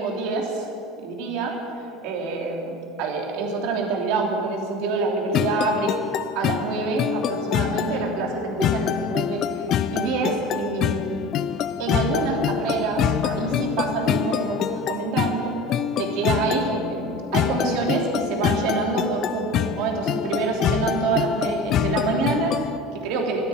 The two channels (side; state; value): both; normal; correlation 0.35